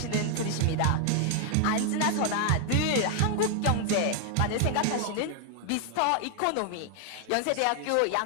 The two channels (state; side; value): different; both; correlation 0.00